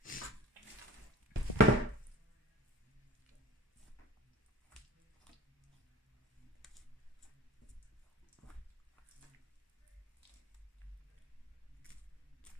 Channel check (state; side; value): normal; both; correlation 0.42